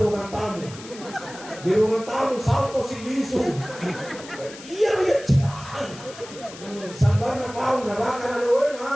tamu. Di ruangan tamu salto si bisu. Iya cian. Sambar na pau neraka na doy na,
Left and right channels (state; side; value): noise; left; hiss, 16 dB below the sound